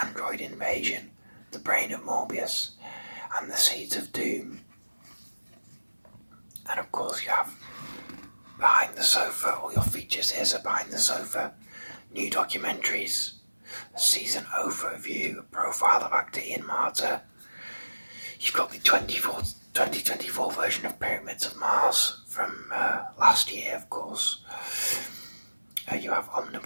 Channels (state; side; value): inverted; both; correlation -1.00